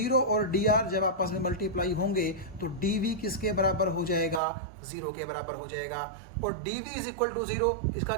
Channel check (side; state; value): left; drops out; at 4.4 s